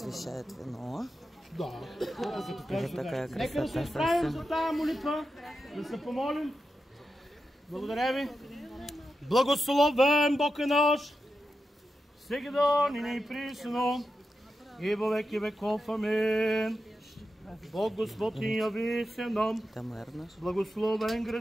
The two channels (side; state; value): both; normal; correlation 0.90